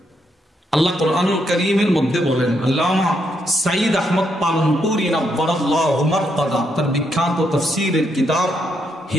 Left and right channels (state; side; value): normal; both; correlation 0.78